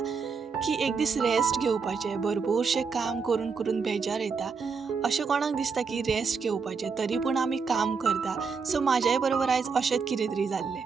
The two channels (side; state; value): left; quieter; 5.3 dB